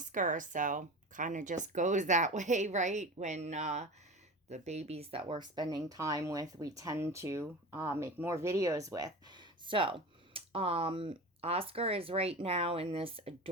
So kind of just goes that way, right? When the babies that we're spending time with, we tend to make more videos with. So, Oscar is right now in this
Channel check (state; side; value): normal; both; correlation 0.31